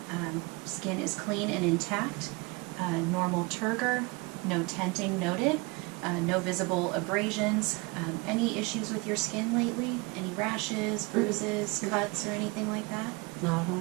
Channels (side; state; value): left; quieter; 26.7 dB